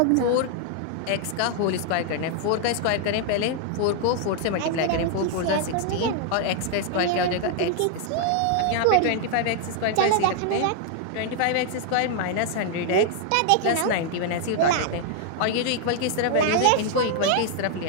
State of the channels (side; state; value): both; different; correlation 0.00